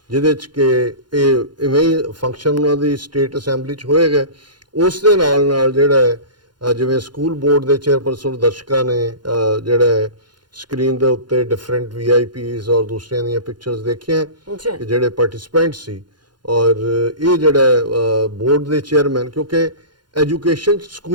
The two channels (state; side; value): late; left; 0.71 ms